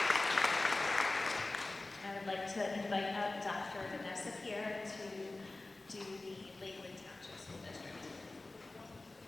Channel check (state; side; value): quieter; right; 3.1 dB